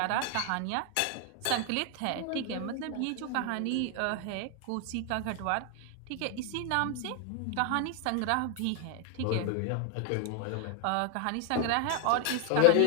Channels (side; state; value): both; different; correlation 0.00